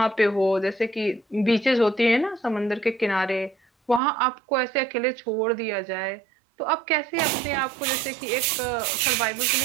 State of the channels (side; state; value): left; drops out; at 4.0 s